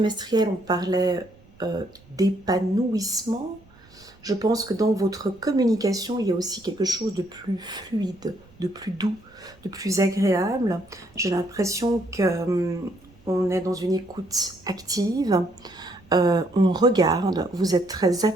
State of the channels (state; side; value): noise; right; rumble, 28 dB below the sound